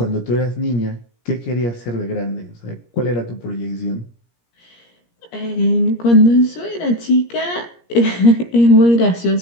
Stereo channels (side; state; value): right; late; 17 ms